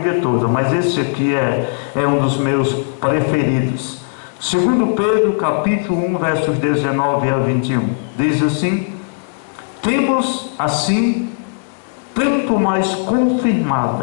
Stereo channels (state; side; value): silent; right; 68 dB below the other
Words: toda, mas esse aqui é um dos meus preferidos. 2 Pedro capítulo 1, versos 19 a 21. Diz assim: temos assim tanto mais